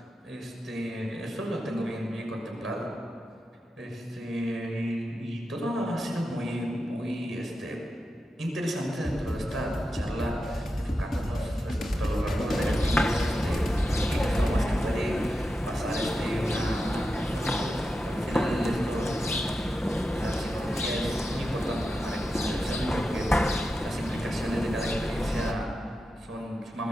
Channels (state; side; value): normal; both; correlation 0.89